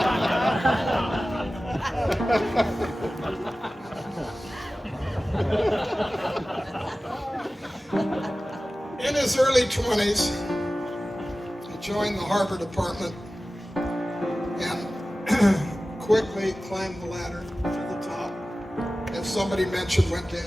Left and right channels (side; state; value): both; normal; correlation 0.96